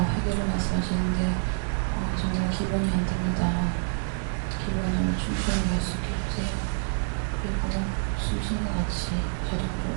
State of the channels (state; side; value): silent; left; digital silence